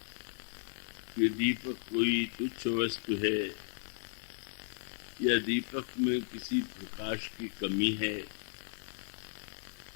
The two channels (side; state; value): right; silent; digital silence